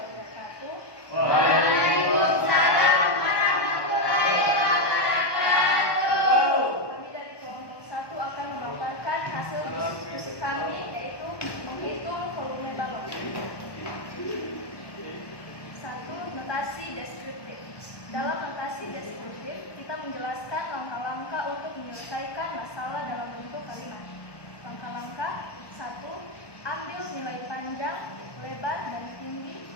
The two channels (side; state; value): right; late; 1.1 ms